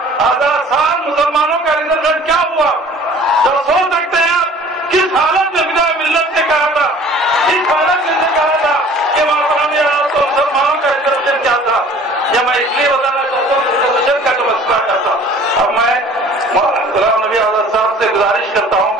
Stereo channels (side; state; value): both; normal; correlation 0.49